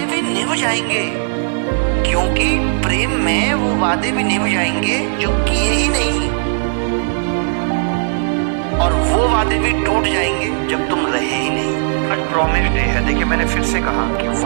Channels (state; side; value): silent; left; 59 dB below the other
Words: भी निभ जाएंगे, क्योंकि प्रेम में वो वादे भी निभ जाएंगे जो किए ही नहीं, और वो वादे भी टूट जाएंगे जब तुम रहे ही नहीं। आज प्रॉमिस डे है, देखिए मैंने फिर से कहा कि